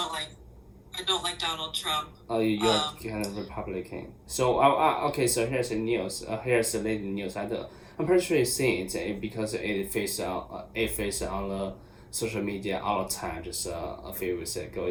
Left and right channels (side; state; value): both; identical; correlation 1.00